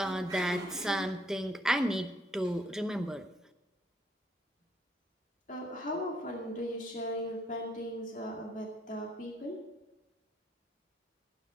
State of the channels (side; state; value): both; normal; correlation 0.70